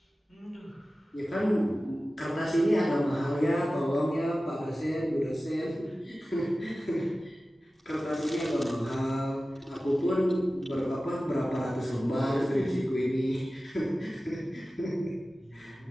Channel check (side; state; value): both; normal; correlation 0.96